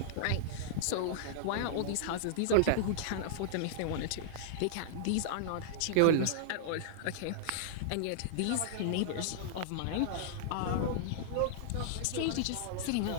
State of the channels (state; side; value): different; both; correlation -0.02